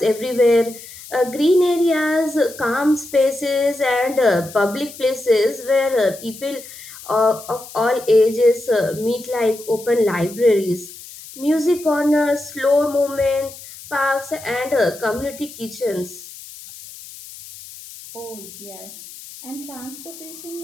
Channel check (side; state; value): left; noise; hiss, 16 dB below the sound